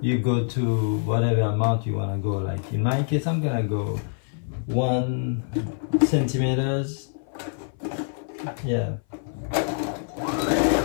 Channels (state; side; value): silent; right; 57 dB below the other